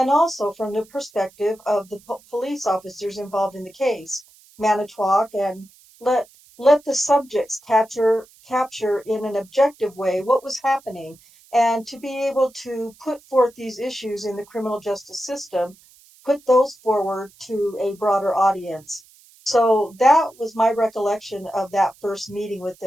also from the perspective of the police officers involved in the case. Manitowoc and let let the subjects capture in an objective way what was happening and to be able to put forth these issues in the criminal justice system, put those forward to a broader audience. So that was my recollection of that first meeting with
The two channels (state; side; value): noise; right; hiss, 27 dB below the sound